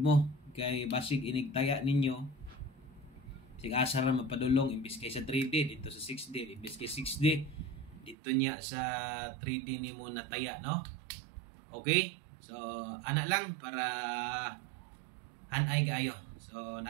mo kay basig inigtaya ninyo. Sig asa ra mapadulong imbis kay sa 3D dito sa 6D, imbis kay 6D dito niya sa 3D nimo nataya, no? Okay? So ana lang para hanay kayo. So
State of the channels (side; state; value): left; drops out; at 8.2 s